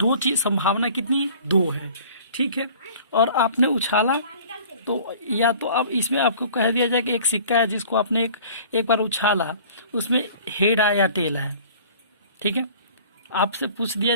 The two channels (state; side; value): inverted; both; correlation -0.48